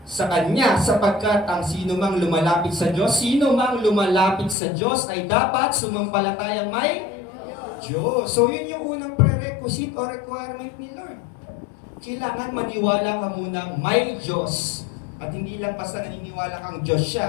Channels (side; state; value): right; drops out; at 4.5 s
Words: sa Kanya, sapagkat ang sino mang lumalapit sa Diyos ay dapat sumampalatayang may Diyos. So yun yung unang prerequisite o requirement ni Lord. Kailangan maniwala ka munang may Diyos. At hindi lang basta naniniwala kang Diyos